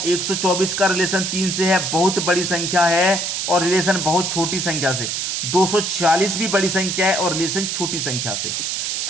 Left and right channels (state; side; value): noise; right; hiss, 1 dB below the sound